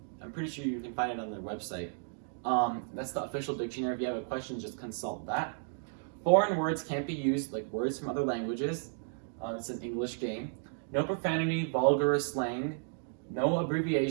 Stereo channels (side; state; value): left; silent; digital silence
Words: I'm pretty sure you can find it on their website. That's the official dictionary. If you have a question, just consult that. Foreign words can't be used, like words from other languages. It's an English game. No profanity, vulgar, or slang. No